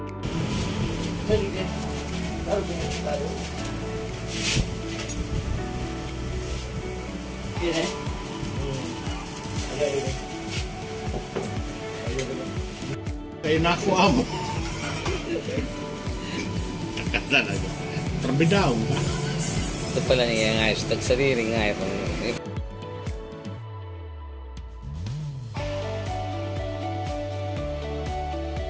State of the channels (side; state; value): both; identical; correlation 1.00